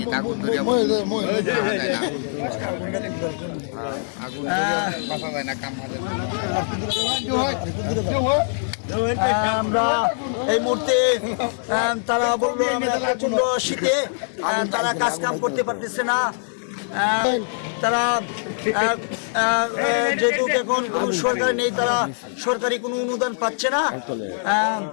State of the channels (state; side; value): silent; right; digital silence